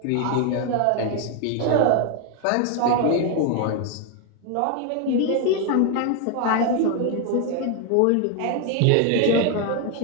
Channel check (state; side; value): different; both; correlation 0.01